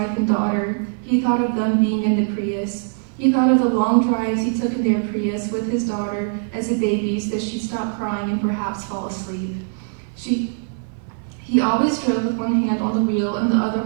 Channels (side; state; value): left; silent; 58 dB below the other